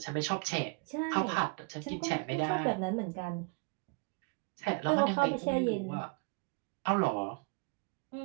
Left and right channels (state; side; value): quieter; left; 32.5 dB